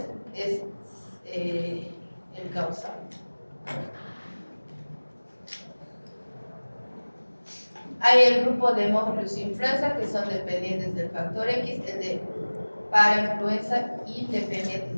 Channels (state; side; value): inverted; both; correlation -1.00